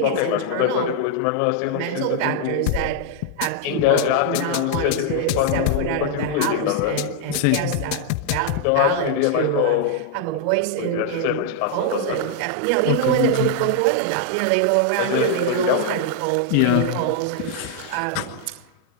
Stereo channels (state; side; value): different; both; correlation 0.00